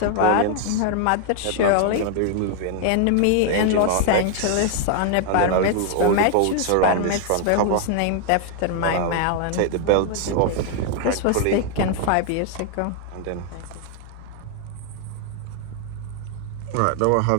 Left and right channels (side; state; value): both; different; correlation 0.00